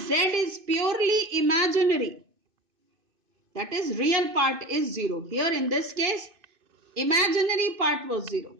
is purely imaginary, that is real part is 0. Here in this case, imaginary part was 0.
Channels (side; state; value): left; late; 2.6 ms